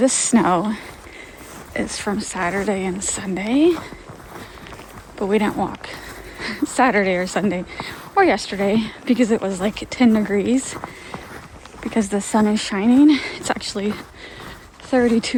snow is from Saturday and Sunday, but we didn't walk Saturday or Sunday or yesterday because it was like 10 degrees because the sun is shining. It's actually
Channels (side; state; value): both; identical; correlation 1.00